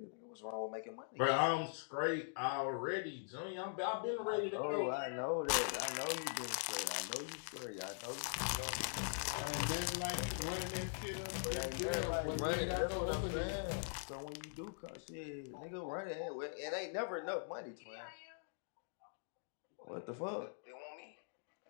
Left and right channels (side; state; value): right; silent; digital silence